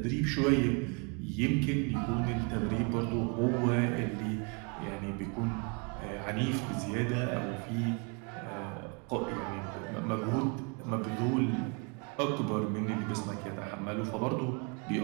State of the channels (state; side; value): quieter; left; 34.0 dB